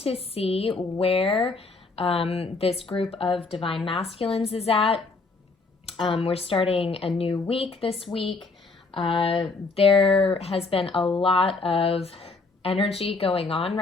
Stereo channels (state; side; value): quieter; right; 3.9 dB